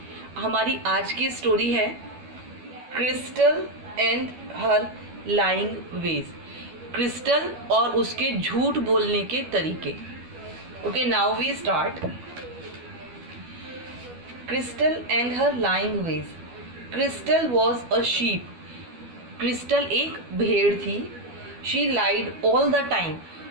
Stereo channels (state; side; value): late; left; 12 ms